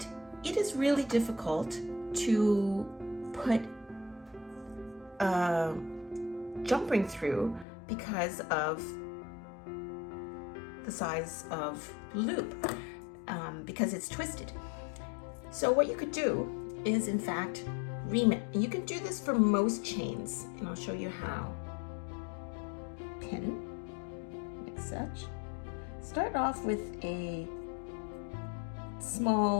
it is really difficult to put a jump ring through because of the size of the loop, because it's twisted. So what you could do is, in fact, ream it. And you can do this for most chains, and I'll show you how. Pin, like such. Start off with a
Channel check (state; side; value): drops out; right; at 7.7 s